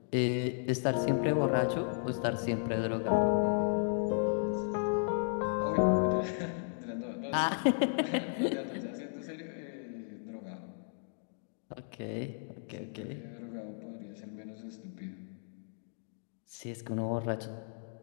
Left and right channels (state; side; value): silent; right; digital silence